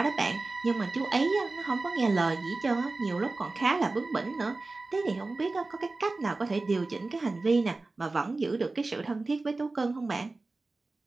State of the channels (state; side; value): quieter; left; 3.4 dB